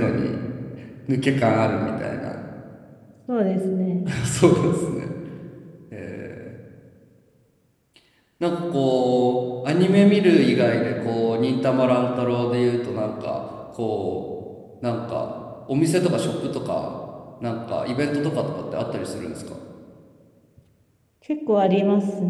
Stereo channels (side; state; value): both; identical; correlation 1.00